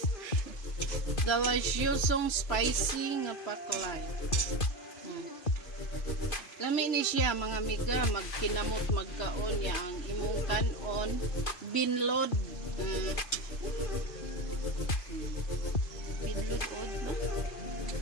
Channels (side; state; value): right; late; 3.0 ms